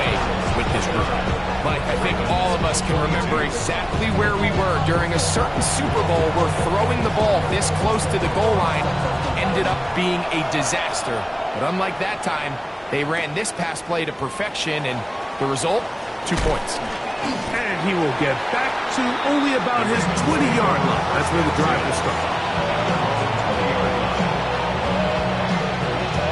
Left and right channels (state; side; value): identical; both; correlation 1.00